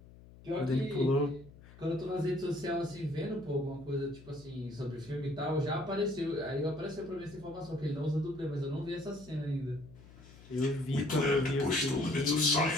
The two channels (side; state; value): left; noise; hum, 20 dB below the sound